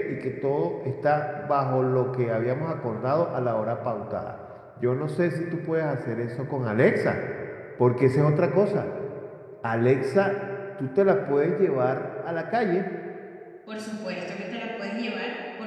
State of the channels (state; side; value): identical; both; correlation 1.00